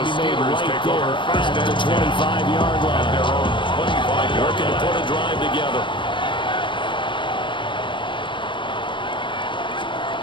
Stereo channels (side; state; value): right; late; 0.24 ms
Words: be made right there at the 25-yard line. Working to put a drive together.